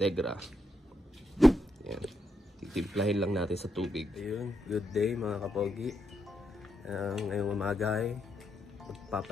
Yan. Titimplahin lang natin sa tubig. Ayun, good day mga kapogi. Ngayong umaga ay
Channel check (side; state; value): both; normal; correlation 0.81